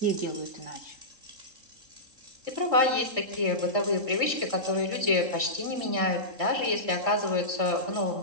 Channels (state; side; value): late; left; 3.7 ms